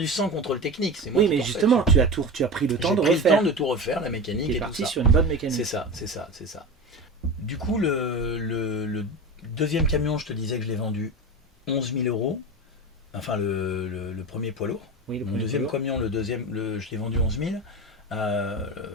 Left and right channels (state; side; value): normal; both; correlation 0.26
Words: sans contrôle technique. C'est moi oui, mais justement, tu as pris le temps de refaire. J'ai pris le temps de tout refaire, la mécanique et tout ça. Tu es parti sur une bonne mécanique. C'est ça. Du coup, le deuxième camion, je te disais que je l'ai vendu 11 000 €, enfin le premier poids lourd. Oui, le deuxième camion, je l'ai vendu 11 000.